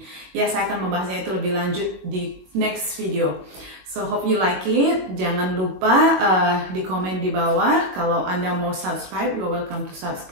Ya, saya akan membahasnya itu lebih lanjut di next video. So hope you like it. Jangan lupa di komen di bawah. Kalau Anda mau subscribe, you're welcome to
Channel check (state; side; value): late; left; 22 ms